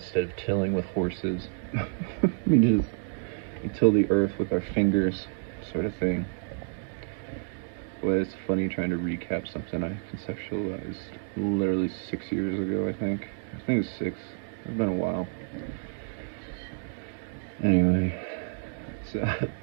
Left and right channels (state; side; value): silent; left; digital silence